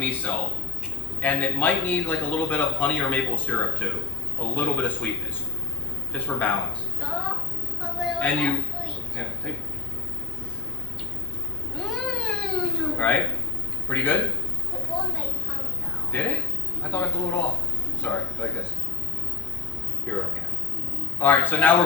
and it might need like a little bit of honey or maple syrup too, a little bit of sweetness, just for balance. Oh, but And you, sweet. yeah, take, Mmm. right? Pretty good. It blew my tongue though. Did it? I thought I blew it off. Sorry, like this. Here, okay. All right, so now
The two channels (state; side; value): quieter; right; 5.3 dB